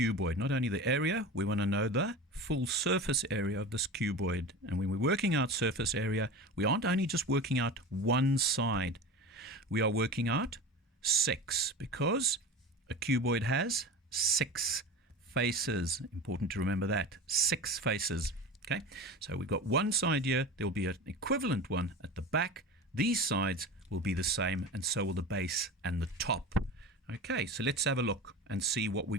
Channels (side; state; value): both; normal; correlation 0.30